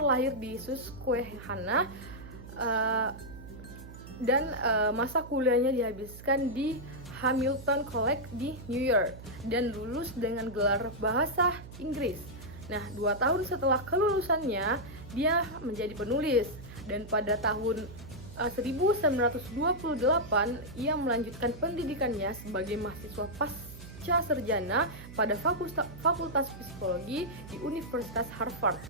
di Susquehanna dan masa kuliahnya dihabiskan di Hamilton College di New York dan lulus dengan gelar bahasa Inggris. Nah, 2 tahun setelah kelulusannya, dia menjadi penulis dan pada tahun 1928 ia melanjutkan pendidikannya sebagai mahasiswa pasca sarjana pada Fakultas Psikologi di Universitas Harvard.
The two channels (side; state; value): right; noise; hum, 15 dB below the sound